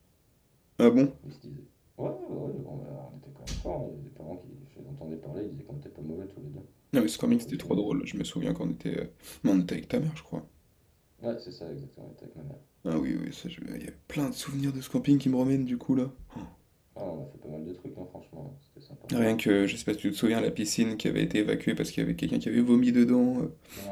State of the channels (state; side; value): identical; both; correlation 1.00